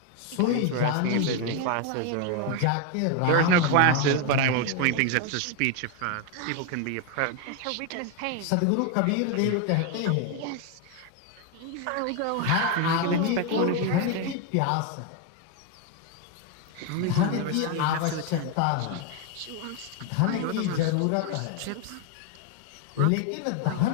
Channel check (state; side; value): different; both; correlation 0.01